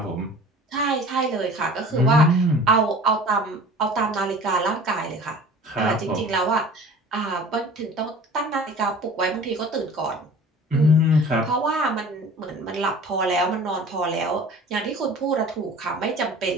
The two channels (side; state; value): both; normal; correlation 0.43